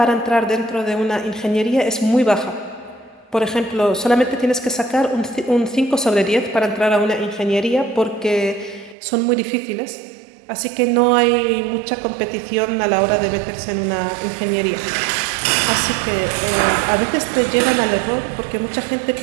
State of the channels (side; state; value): left; drops out; at 9.0 s